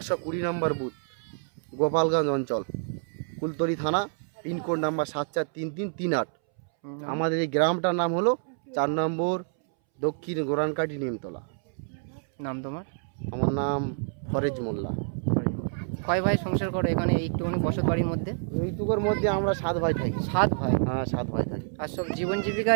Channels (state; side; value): silent; left; 60 dB below the other